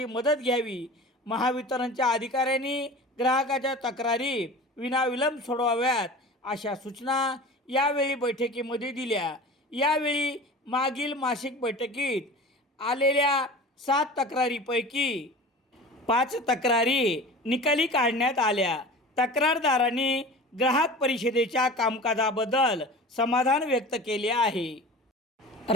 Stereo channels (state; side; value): normal; both; correlation 0.37